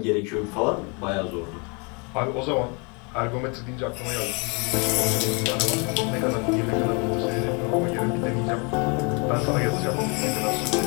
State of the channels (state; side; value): quieter; right; 32.9 dB